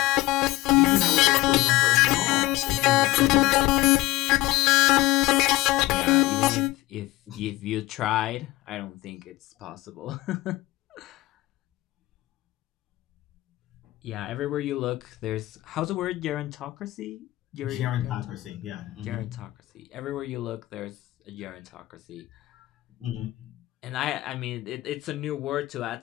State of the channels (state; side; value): quieter; right; 18.1 dB